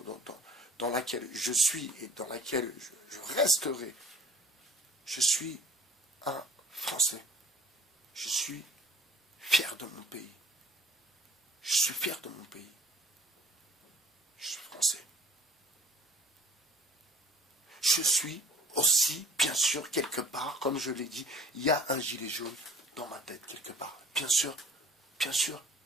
dans laquelle je suis et dans laquelle je resterai. Je suis un Français. Je suis fier de mon pays. Je suis fier de mon pays. Je suis français. Je suis aussi, bien sûr, quelque part, comme je l'ai dit, il y a un gilet jaune dans ma tête, quelque part. Bien sûr,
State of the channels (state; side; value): normal; both; correlation 0.52